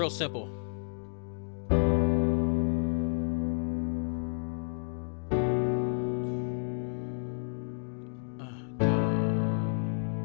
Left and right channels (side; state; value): right; silent; digital silence